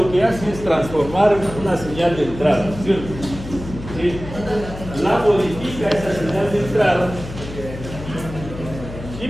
que hace es transformar una señal de entrada, ¿cierto? ¿Sí? La modifica esa señal de entrada y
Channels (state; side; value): noise; left; hum, 11 dB below the sound